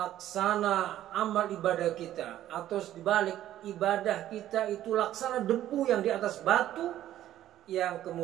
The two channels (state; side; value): quieter; left; 12.6 dB